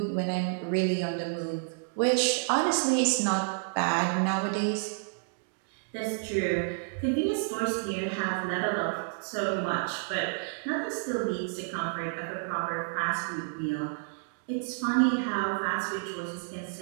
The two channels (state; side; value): silent; left; digital silence